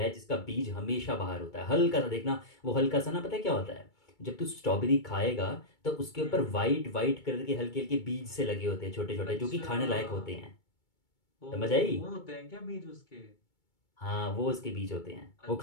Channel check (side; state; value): right; late; 2.2 ms